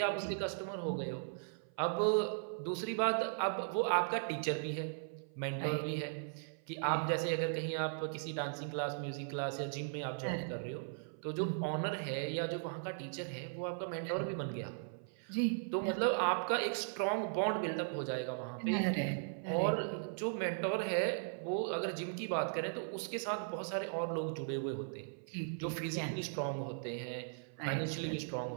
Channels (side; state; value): left; silent; 52 dB below the other